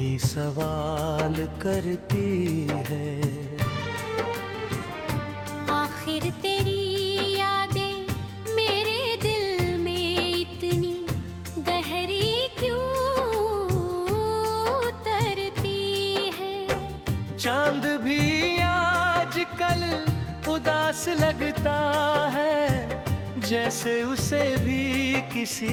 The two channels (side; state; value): both; identical; correlation 1.00